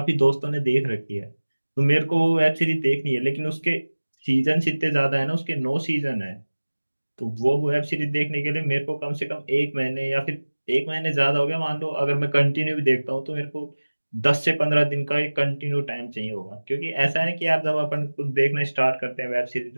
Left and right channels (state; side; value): inverted; both; correlation -1.00